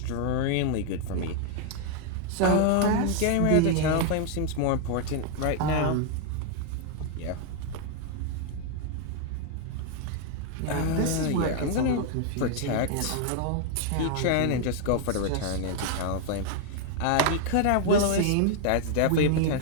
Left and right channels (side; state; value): both; different; correlation 0.00